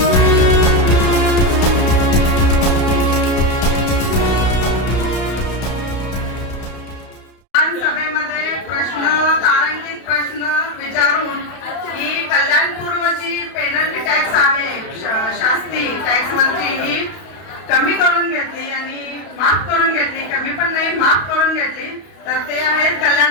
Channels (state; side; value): late; right; 32 ms